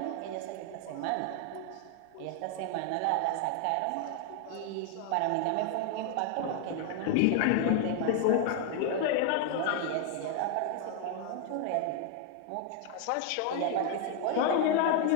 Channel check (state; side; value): different; both; correlation 0.00